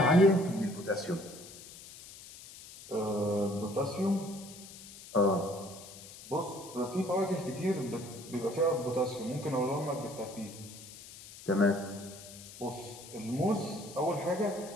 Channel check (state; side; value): noise; left; hiss, 16 dB below the sound